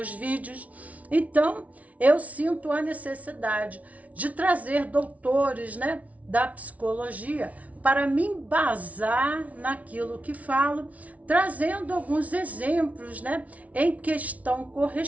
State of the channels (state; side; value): late; left; 0.068 ms